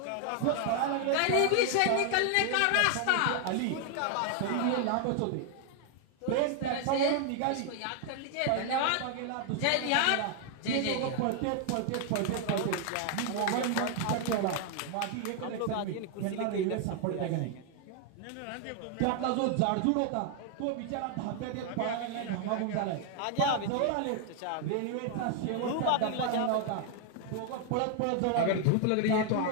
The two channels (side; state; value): both; different; correlation 0.00